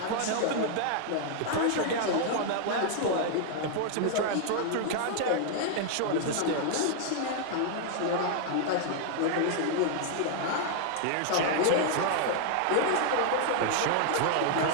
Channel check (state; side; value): different; both; correlation -0.01